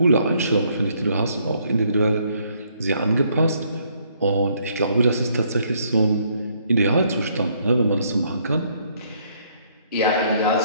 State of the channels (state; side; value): inverted; both; correlation -0.67